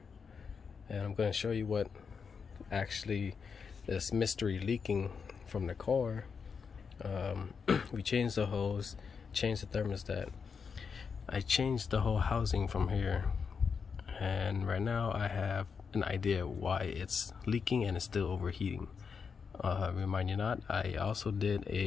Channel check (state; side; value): quieter; right; 5.8 dB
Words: and I'm going to show you what actually this mystery leaking from the car. We changed the hose, changed the thermostat. I changed the whole housing from here, and right now I have an idea why it's leaking and it's still overheating. Remind you not, I also did